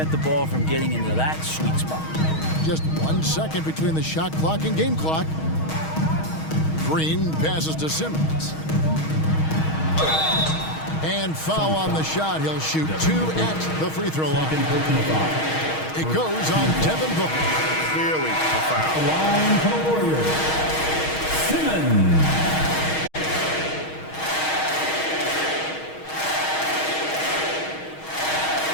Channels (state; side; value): late; right; 6.3 ms